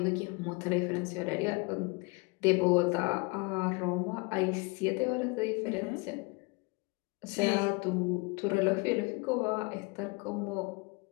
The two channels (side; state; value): right; quieter; 28.3 dB